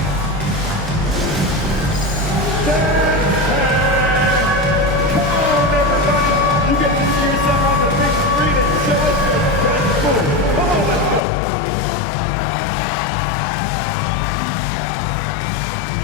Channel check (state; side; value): drops out; right; at 11.2 s